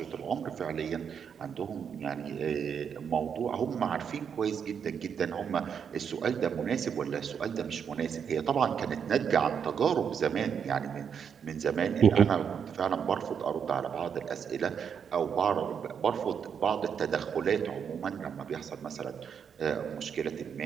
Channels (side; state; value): left; quieter; 7.3 dB